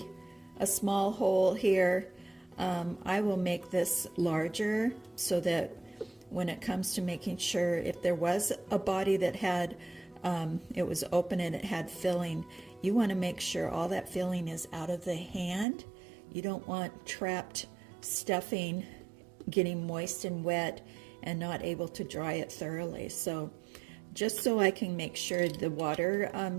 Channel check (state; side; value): drops out; left; at 15.7 s